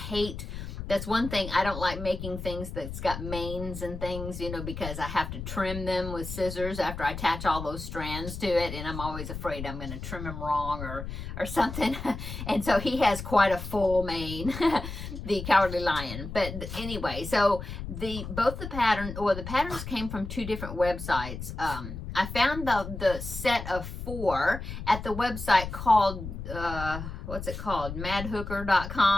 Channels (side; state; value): left; noise; rumble, 8 dB below the sound